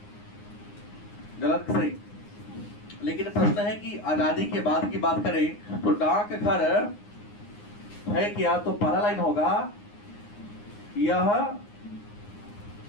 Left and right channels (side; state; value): right; late; 9.7 ms